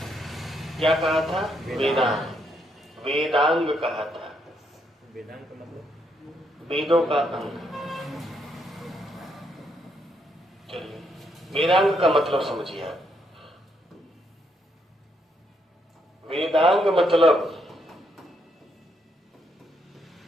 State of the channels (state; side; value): normal; both; correlation 0.76